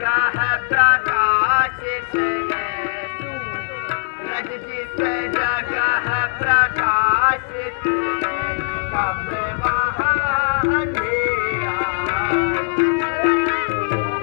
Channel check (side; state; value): right; silent; 63 dB below the other